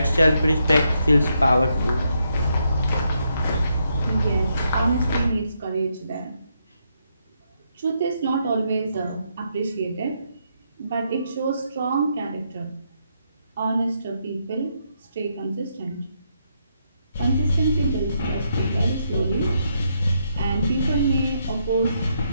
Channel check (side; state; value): both; inverted; correlation -0.78